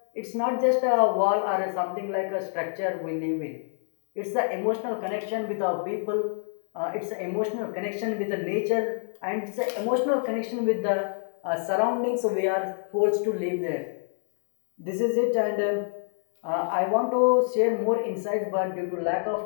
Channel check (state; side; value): silent; right; digital silence